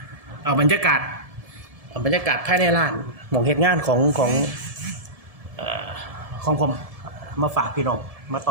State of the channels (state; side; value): late; left; 1.7 ms